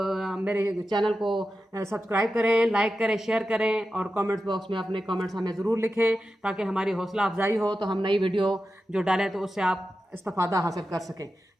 चैनल को सब्सक्राइब करें, लाइक करें, शेयर करें, और कमेंट्स बॉक्स में अपने कमेंट्स हमें ज़रूर लिखें, ताकि हमारी हौसला अफजाई हो, तो हम नई वीडियो जो डालें तो उससे आप इस्तेफादा हासिल कर सकें।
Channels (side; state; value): both; normal; correlation 0.92